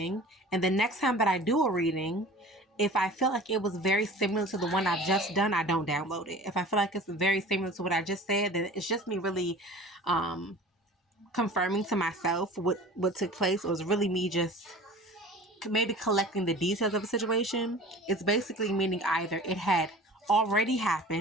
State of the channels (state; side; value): normal; both; correlation 0.42